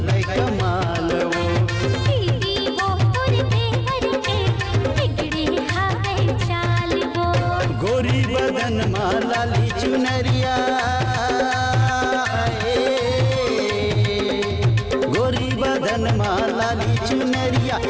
कमाल वो दीदी वो तोर देवर के बिगड़े हावे चाल वो गोरी बदन माला ली चुनरिया गोरी बदन माला ली चुनरिया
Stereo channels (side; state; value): both; identical; correlation 1.00